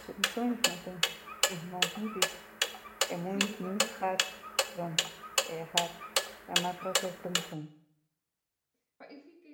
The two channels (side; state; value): both; identical; correlation 1.00